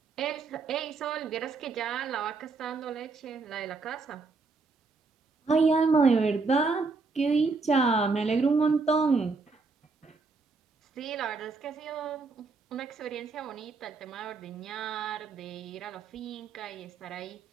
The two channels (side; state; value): left; quieter; 4.2 dB